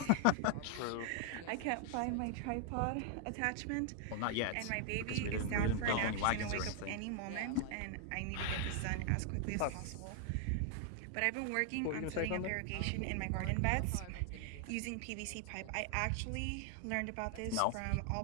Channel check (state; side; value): different; both; correlation 0.00